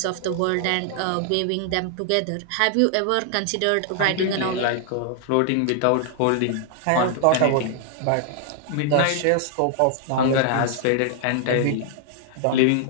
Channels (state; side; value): different; both; correlation 0.00